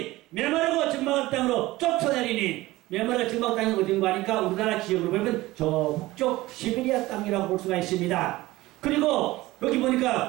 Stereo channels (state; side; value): quieter; left; 18.4 dB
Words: 메마르고 적막한 땅으로 쫓아내리니, 메마르고 적막한 땅이 어딘가 하니까 우리나라 지역으로 보면 저 북쪽 시베리아 땅이라고 볼 수가 있습니다. 그리고 여기